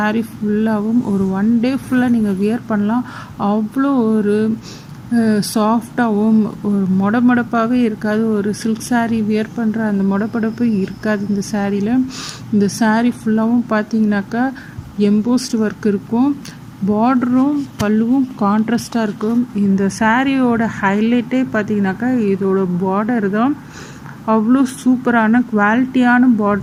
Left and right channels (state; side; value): identical; both; correlation 1.00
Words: ஃபுல்லாகவும் ஒரு 1 day ஃபுல்லாக நீங்கள் வியர் பண்ணலாம். அவ்வளோ ஒரு சாஃப்டாகவும் ஒரு மொடமொடப்பாகவே இருக்காது. ஒரு சில்க் saree வியர் பண்ணுற அந்த மொடப்பொடப்பு இருக்காது இந்த சாரியில். இந்த saree ஃபுல்லாகவும் பார்த்திங்கனாக்கா எம்போஸ்ட் ஒர்க் இருக்கும். பார்டரும் பல்லுவும் கான்ட்ராஸ்டாக இருக்கும். இந்த சாரியோட ஹைலைட்டே பார்த்தீங்கன்னாக்கா இதோட பார்டர் தான். அவ்வளோ சூப்பரான குவாலிட்டியான